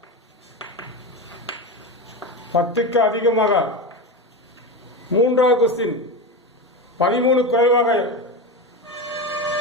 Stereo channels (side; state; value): both; normal; correlation 0.20